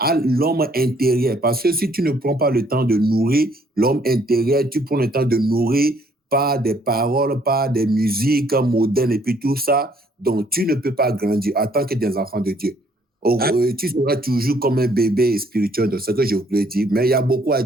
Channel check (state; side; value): normal; both; correlation 0.64